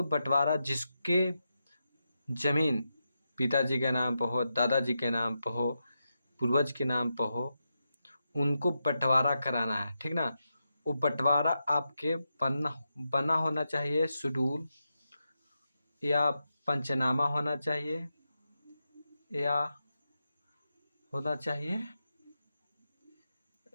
बंटवारा जिसके जमीन पिताजी के नाम पर हो, दादाजी के नाम पर हो, पूर्वज के नाम पर हो, उनको बंटवारा कराना है, ठीक ना। वो बंटवारा आपके बना बना होना चाहिए, शेड्यूल या पंचनामा होना चाहिए या होना चाहिए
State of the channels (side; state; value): both; inverted; correlation -0.87